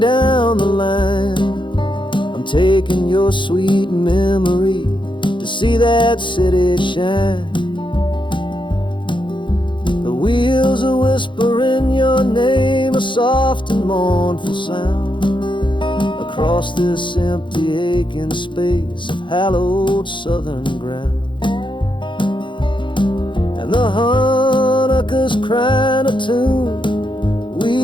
the line, taking your sweet memory to see that city shine. The wheels are whispering your name, a soft and mournful sound, across this empty aching space of hallowed southern ground. And the harmonicas crying a tune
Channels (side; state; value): right; late; 0.23 ms